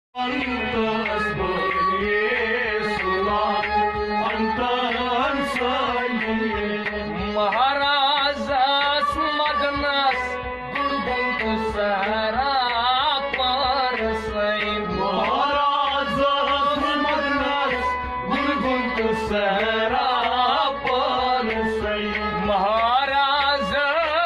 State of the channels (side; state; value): both; identical; correlation 1.00